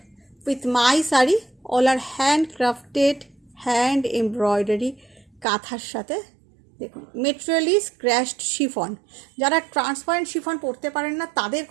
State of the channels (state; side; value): drops out; left; at 5.5 s